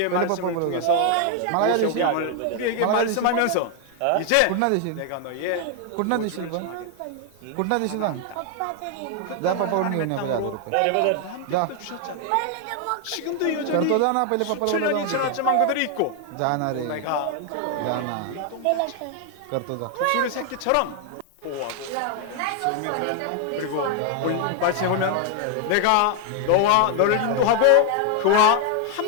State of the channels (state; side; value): different; both; correlation 0.00